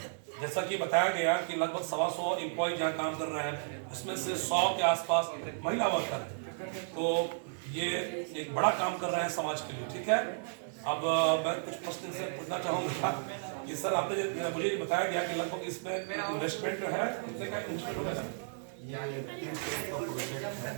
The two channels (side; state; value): left; silent; digital silence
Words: जैसा कि बताया गया कि लगभग 125 एम्प्लॉय जहाँ काम कर रहे हैं, उसमें से 100 के आसपास महिला वर्कर हैं। तो ये एक बड़ा काम कर रहे हैं समाज के लिए। ठीक है, अब मैं कुछ प्रश्न से पूछना चाहूँगा कि सर आपने मुझे ये बताया गया कि लगभग इसमें इन्वेस्टमेंट जो है कितने का इन्वेस्टमेंट होगा?